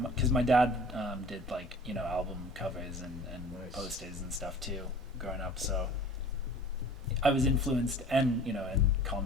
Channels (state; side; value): normal; both; correlation 0.45